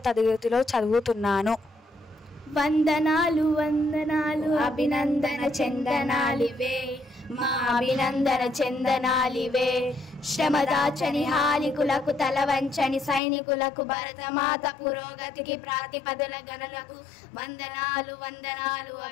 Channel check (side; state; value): right; drops out; at 13.2 s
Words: తరగతిలో చదువుతున్నాను. వందనాలు వందనాలు అభినందన చందనాలివే, మా అభినందన చందనాలివే. శ్రమదాచని హాలికులకు తలవంచని సైనికులకు భరతమాత పురోగతికి ప్రాతిపదల గణలకు వందనాలు వందనాలు